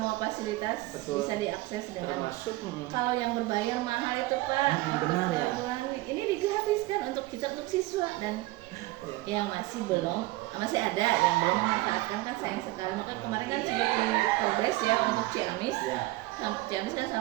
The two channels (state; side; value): quieter; left; 19.4 dB